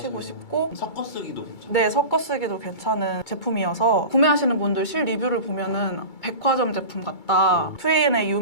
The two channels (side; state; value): right; late; 2.3 ms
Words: 싶고 섞어 쓰기도 괜찮아요. 네, 섞어 쓰기도 괜찮은 제품이어서 구매하시는 분들 실 리뷰를 보면은 백화점 제품 같다. 2AN에